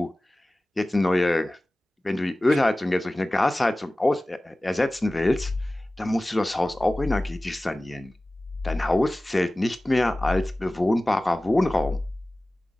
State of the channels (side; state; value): both; normal; correlation 0.97